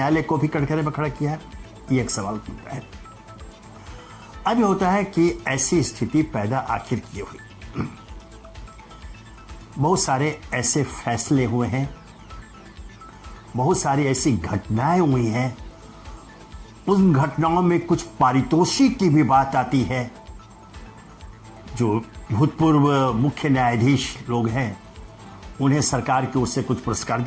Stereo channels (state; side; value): identical; both; correlation 1.00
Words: को भी कटघरे में खड़ा किया है? ये एक सवाल उठता है। अब ये होता है कि ऐसी स्थिति पैदा आखिर क्यों हुई। बहुत सारे ऐसे फैसले हुए हैं, बहुत सारी ऐसी घटनाएं हुई हैं, उन घटनाओं में कुछ पारितोषिक की भी बात आती है। जो भूतपूर्व मुख्य न्यायाधीश लोग हैं उन्हें सरकार की ओर से कुछ पुरस्कार